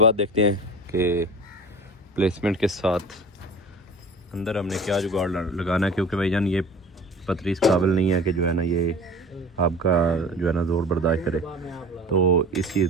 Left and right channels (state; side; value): normal; both; correlation 0.40